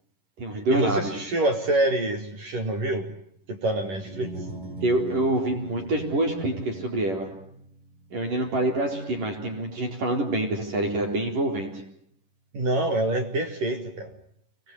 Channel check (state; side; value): late; left; 11 ms